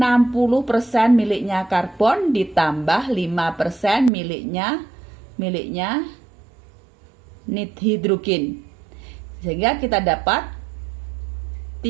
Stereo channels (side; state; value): left; drops out; at 4.1 s